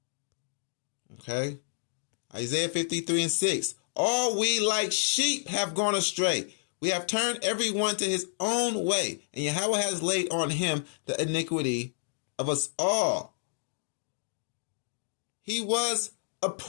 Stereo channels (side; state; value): right; silent; digital silence